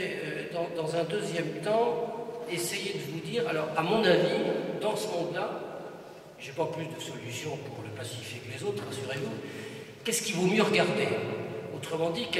dans un deuxième temps, essayer de vous dire, alors, à mon avis, dans ce monde-là, je n'ai pas plus de solutions pour le pacifier que les autres, rassurez-vous, qu'est-ce qu'il vaut mieux regarder? Autrement dit,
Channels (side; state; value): both; identical; correlation 1.00